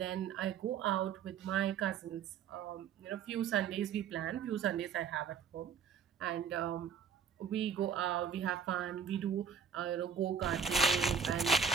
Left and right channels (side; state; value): left; quieter; 6.7 dB